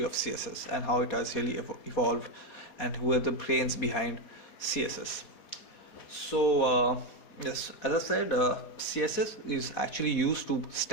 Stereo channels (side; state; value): right; late; 4.1 ms